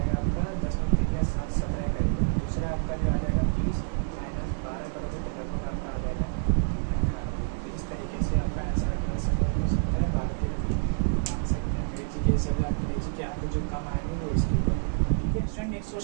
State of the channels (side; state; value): left; silent; digital silence